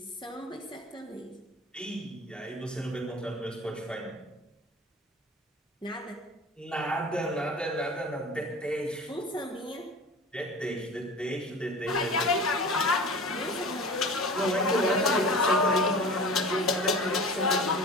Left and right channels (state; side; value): normal; both; correlation 0.37